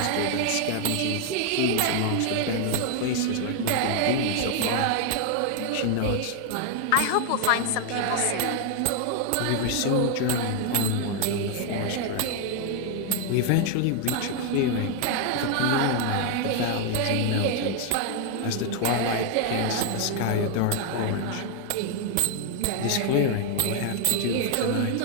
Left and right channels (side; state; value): both; different; correlation 0.00